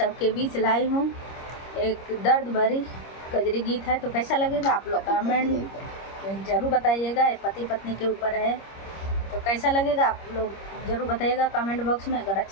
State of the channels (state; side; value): late; right; 25 ms